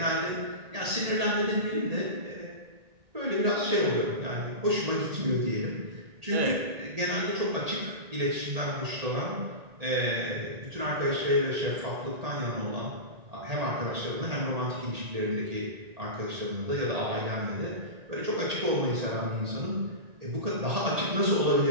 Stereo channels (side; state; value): left; late; 1.8 ms